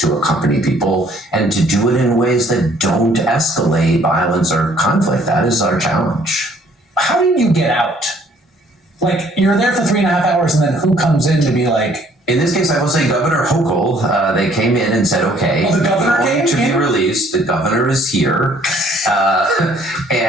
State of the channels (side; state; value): both; normal; correlation 0.61